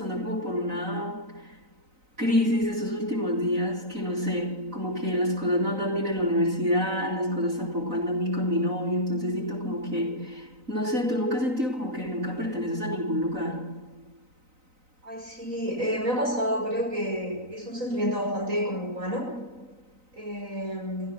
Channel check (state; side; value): late; left; 3.9 ms